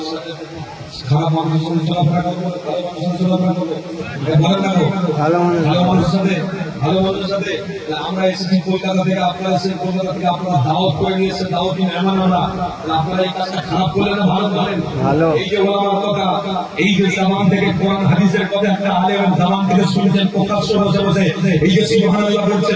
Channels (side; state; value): both; identical; correlation 1.00